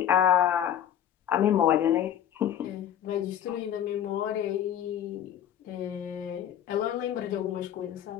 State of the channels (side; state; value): right; quieter; 10.4 dB